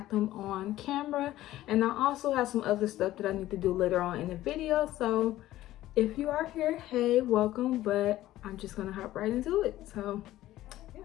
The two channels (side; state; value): right; quieter; 14.9 dB